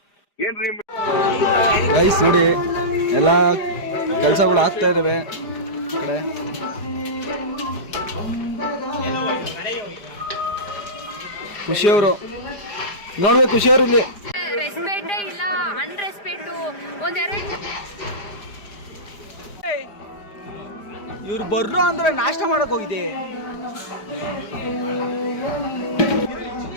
ಏನ್ರಿ ಗೈಸ್ ನೋಡಿ, ಎಲ್ಲ ಕೆಲಸಗಳು ಆಗ್ತಾ ಇದಾವೆ ಕಡೆ. ಖುಷಿಯವರು ನೋಡ್ಬೇಕು, ಖುಷಿಯವರು ಇಲ್ಲಿ ರೆಸ್ಪೆಕ್ಟ್ ಇಲ್ಲ, ಅನ್ರೆಸ್ಪೆಕ್ಟ್ ಒಂದೆರಡು. ಇವ್ರು ಬರ್ರು ಅಂದ್ರೆ ನಾಷ್ಟ ಮಾಡಕ್ ಹೋಗಿದೆ.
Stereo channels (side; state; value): right; late; 5.0 ms